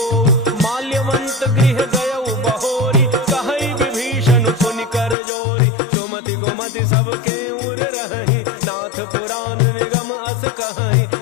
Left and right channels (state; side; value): drops out; right; at 5.2 s